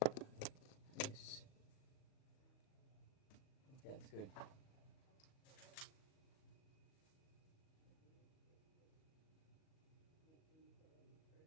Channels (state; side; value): late; right; 38 ms